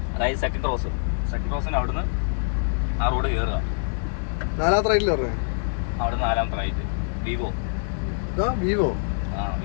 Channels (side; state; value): right; silent; digital silence